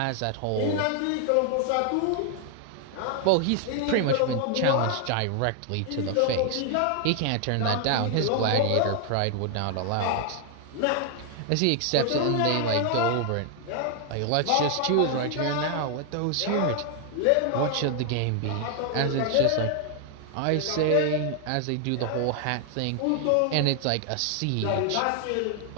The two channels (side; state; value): both; different; correlation 0.00